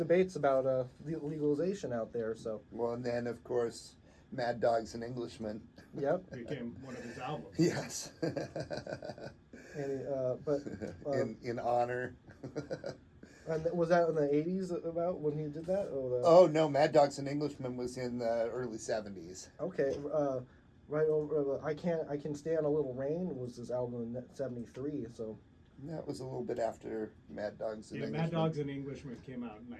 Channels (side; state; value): both; identical; correlation 1.00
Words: about legalization out there. So Well, and then, of course, Mad Dog's an Englishman. yep. Became one of his albums. Yes. And in honor. and was that in the 80s about when he did that? Or Oh, no, Mad Dog's an Englishman was in the early 70s. okay. Right over. I can stand a little rain was his album in '73. So That was a little bit after Mad Dog's an Yeah, Englishman. Mad Dogs and Englishmen came out in